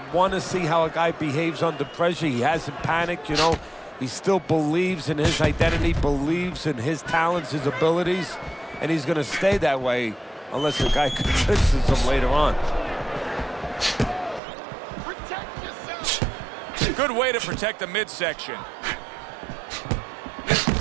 want to see how a guy behaves under pressure. He hasn't panicked, you know. He still believes in his identity, believes in his talents, his abilities, and he's going to stay that way unless the guy convinces him later on. Protect yourself. Good way to protect the midsection.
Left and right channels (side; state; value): left; drops out; at 14.4 s